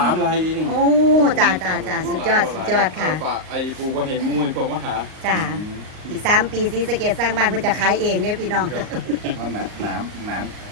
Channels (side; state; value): left; late; 38 ms